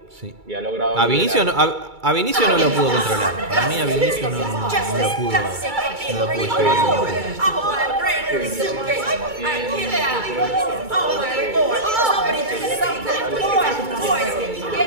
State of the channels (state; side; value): late; left; 2.3 ms